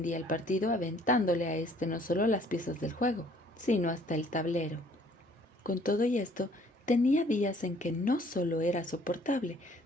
el partido aventándole a éste no solo las piezas del juego, sino hasta el tablero. Con todo y esto, tenía días en que no solo era soportable,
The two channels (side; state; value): both; normal; correlation 0.59